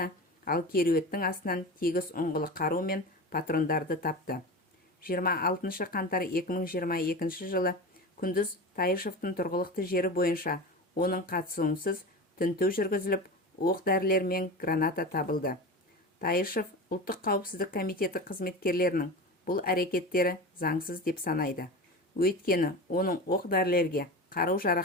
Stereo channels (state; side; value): normal; both; correlation 0.28